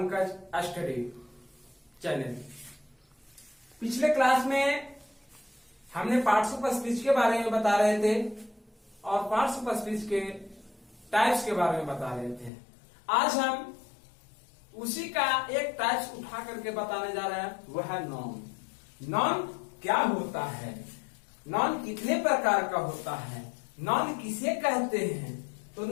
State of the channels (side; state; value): right; drops out; at 12.5 s